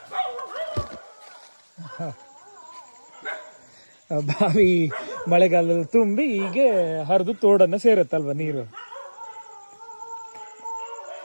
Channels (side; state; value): both; inverted; correlation -1.00